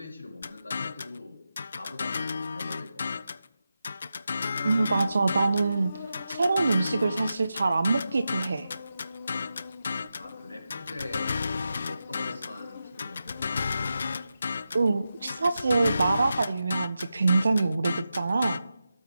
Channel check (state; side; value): inverted; both; correlation -0.90